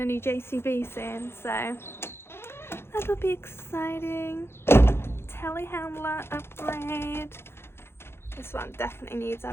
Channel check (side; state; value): right; late; 0.12 ms